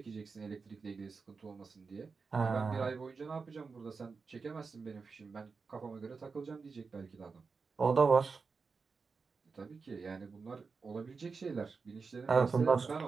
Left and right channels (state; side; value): quieter; left; 4.8 dB